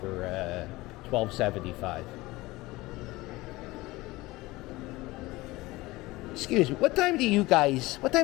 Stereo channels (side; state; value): right; quieter; 20.2 dB